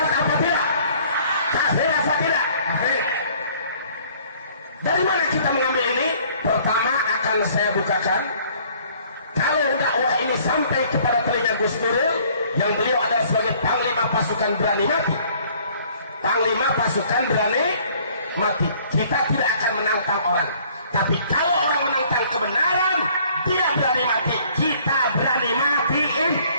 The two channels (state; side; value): inverted; both; correlation -0.58